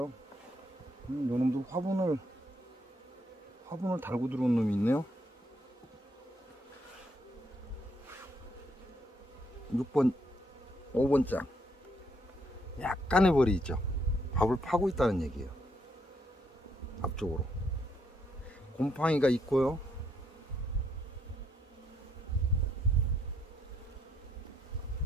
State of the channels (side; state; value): both; normal; correlation 0.74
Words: 요놈도 화분을 달고 들어온 놈이 있네요. 6번, 5번장. 약간의 벌이 있죠. 밥을 파고 있다는 얘기예요. 앞쪽으로. 곰팡이가 있고요.